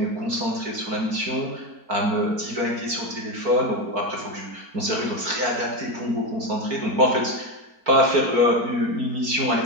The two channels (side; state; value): left; late; 4.5 ms